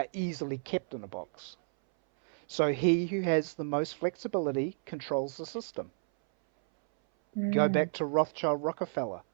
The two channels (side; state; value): left; silent; 57 dB below the other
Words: easily kept in a box. So he who has the most flexibility controls the system. Go Mm. back to Rothschild Rockefeller.